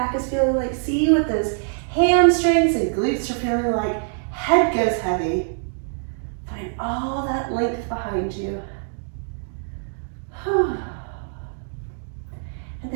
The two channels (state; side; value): silent; left; digital silence